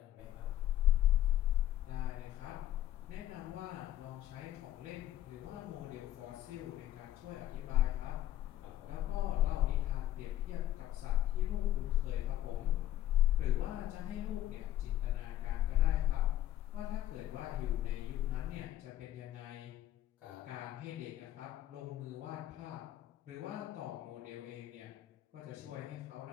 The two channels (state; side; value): quieter; right; 13.1 dB